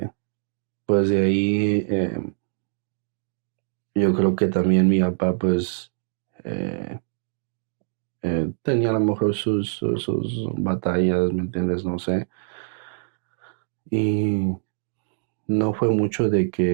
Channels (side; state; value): left; silent; digital silence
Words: pues de ahí yo creo que también mi papá pues eh, tenía a lo mejor sus batallas, ¿me entiendes? No sé. Y no fue mucho de